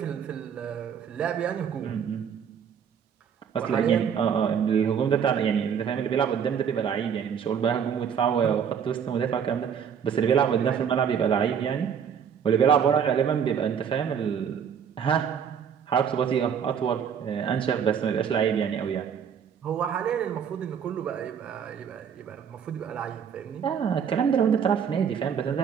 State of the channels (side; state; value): left; quieter; 7.6 dB